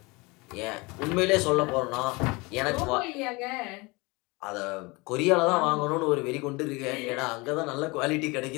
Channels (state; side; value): quieter; right; 25.5 dB